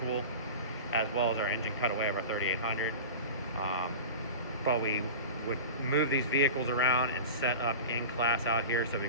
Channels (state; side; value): inverted; both; correlation -0.32